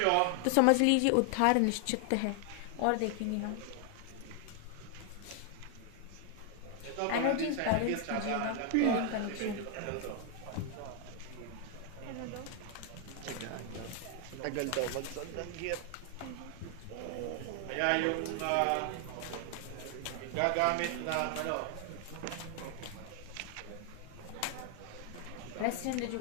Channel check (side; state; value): both; different; correlation 0.00